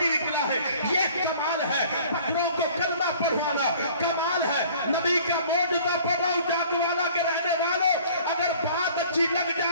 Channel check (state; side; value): inverted; both; correlation -0.51